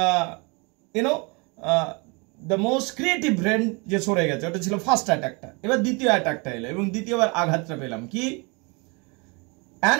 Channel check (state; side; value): quieter; left; 30.3 dB